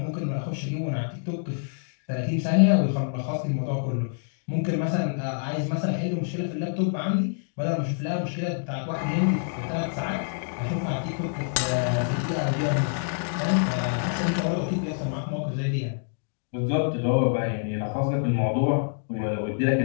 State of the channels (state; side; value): silent; right; digital silence